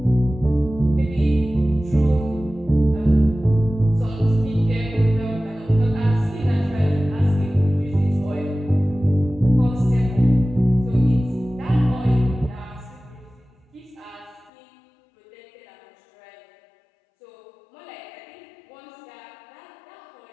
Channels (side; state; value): right; drops out; at 14.5 s